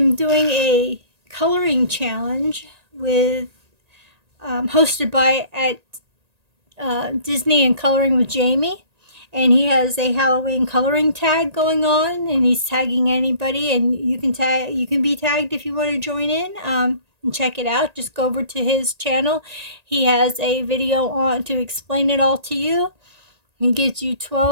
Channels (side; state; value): left; late; 1.8 ms